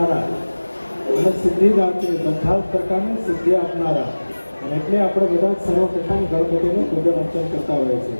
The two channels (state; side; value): inverted; both; correlation -1.00